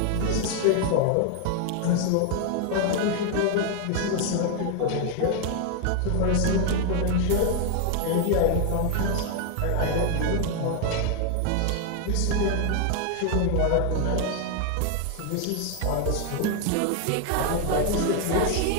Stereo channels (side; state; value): both; different; correlation 0.00